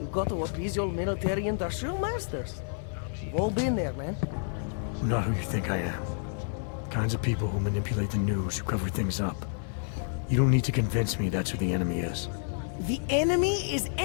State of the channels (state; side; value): silent; right; digital silence